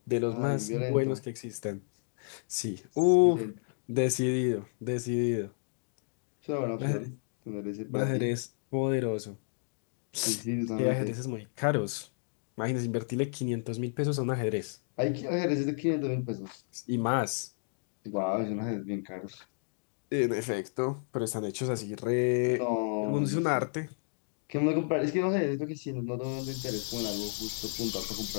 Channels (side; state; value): right; silent; digital silence